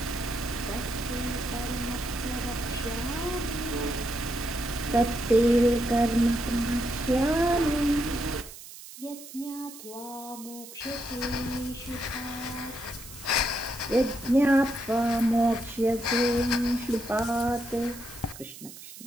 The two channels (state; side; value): noise; right; hiss, 15 dB below the sound